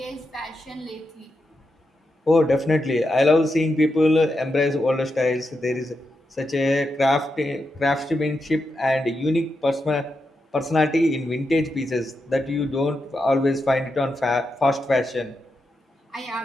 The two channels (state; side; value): normal; both; correlation 0.86